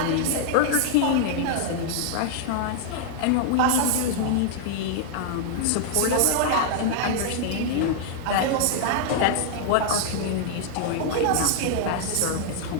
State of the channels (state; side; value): different; both; correlation -0.01